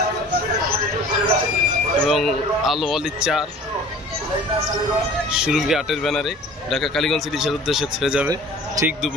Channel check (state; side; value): normal; both; correlation 0.45